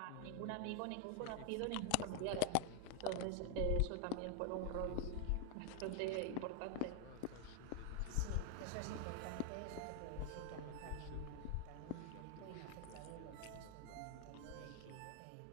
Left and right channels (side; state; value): both; different; correlation 0.00